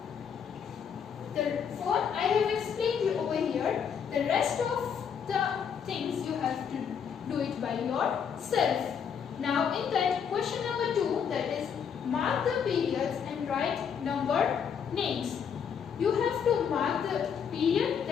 Therefore, I have explained you over here. The rest of the things you have to do it by yourself. Now in that, periods and write number names. You have to mark the period,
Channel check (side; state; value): right; quieter; 7.3 dB